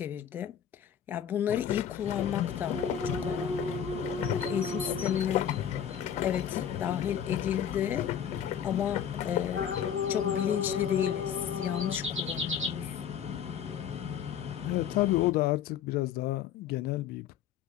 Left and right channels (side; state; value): right; quieter; 8.9 dB